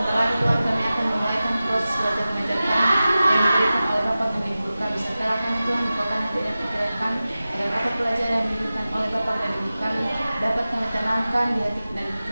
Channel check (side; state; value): both; inverted; correlation -0.95